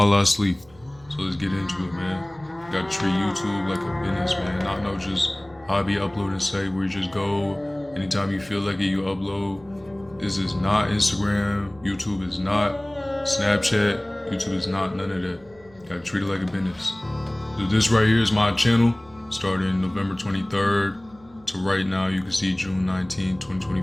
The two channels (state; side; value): noise; right; hum, 27 dB below the sound